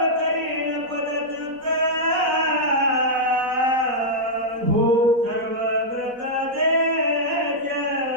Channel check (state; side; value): late; left; 4.1 ms